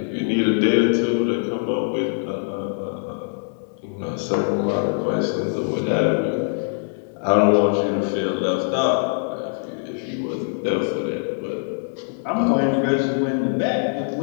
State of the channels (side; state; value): right; silent; digital silence